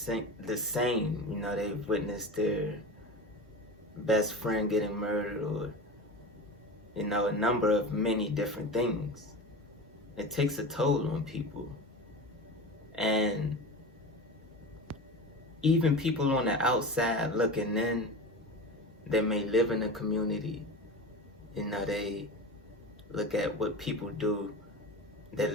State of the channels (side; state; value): both; normal; correlation 0.29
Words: the same. They've witnessed their best friend getting murdered, or a number of many different things. It takes a toll on people. And even people on the outside looking in, that may live in a community, they look at what people do